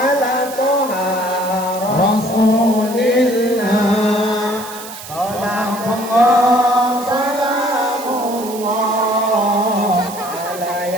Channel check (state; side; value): noise; right; hiss, 13 dB below the sound